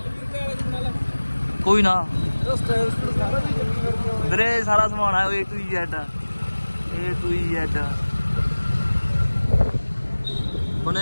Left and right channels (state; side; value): inverted; both; correlation -1.00